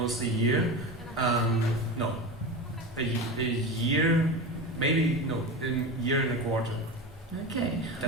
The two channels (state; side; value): normal; both; correlation 0.25